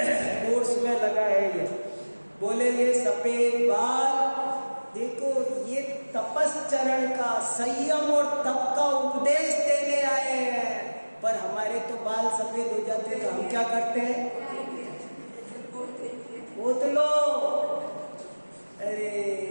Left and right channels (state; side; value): inverted; both; correlation -1.00